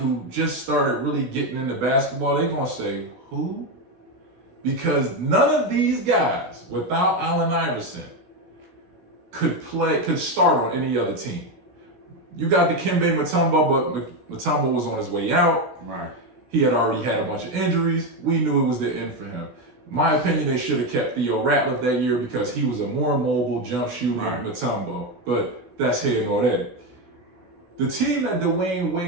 just started really getting into basketball, they're going to say, who? Because none of these guys, without Allen Iverson, could start on any other team. You got the Dikembe Mutombo, but Mutombo was on his way out. Right. He had already had a bunch of injuries. We knew it was the end for him. My opinion, they should have kept Theo Ratliff that year because he was a more mobile jump shooter than Mutombo. But that's here nor there. The team that Dwayne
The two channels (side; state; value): left; late; 16 ms